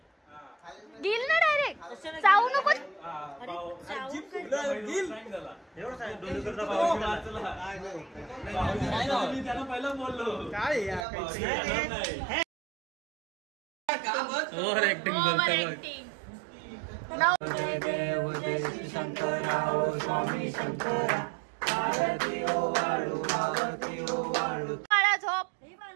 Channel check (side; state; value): left; drops out; at 11.1 s